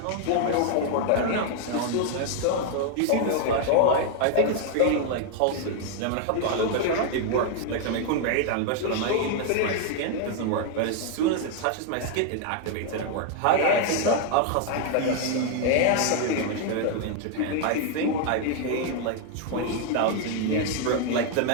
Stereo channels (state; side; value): different; both; correlation 0.00